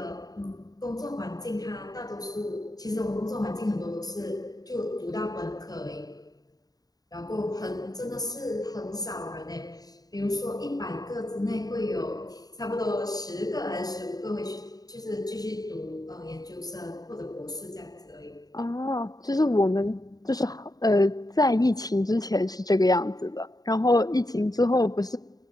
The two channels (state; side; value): late; right; 0.18 ms